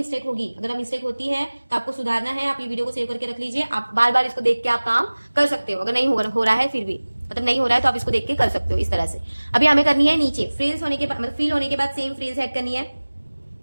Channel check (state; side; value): inverted; both; correlation -1.00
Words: होगी। अगर मिस्टेक होती है तो आपको सुधारना है। आप ये वीडियो को सेव करके रख लीजिए। आप बार बार इसको देख के आप काम कर सकते हो। अगर नहीं हो रहा है फिर भी, मतलब नहीं हो रहा है तो आप इसको देख के कर सकते हो इस तरह से। अभी हमें करनी है नीचे फ्रिल्स होने के बाद, मतलब फील होने के बाद सेम फ्रिल्स ऐड करनी है।